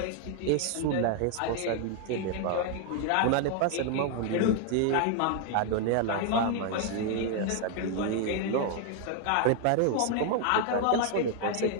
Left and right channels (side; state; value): both; different; correlation 0.01